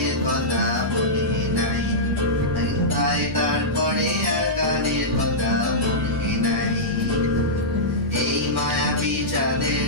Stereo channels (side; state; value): both; normal; correlation -0.13